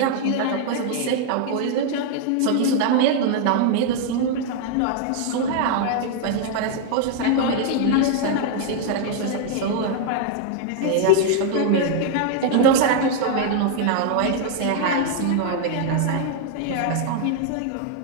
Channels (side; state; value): both; different; correlation 0.00